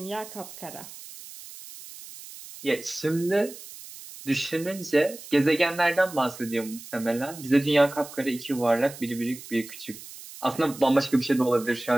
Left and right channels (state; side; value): noise; right; hiss, 15 dB below the sound